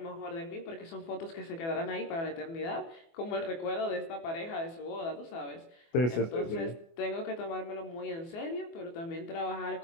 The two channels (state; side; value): late; right; 24 ms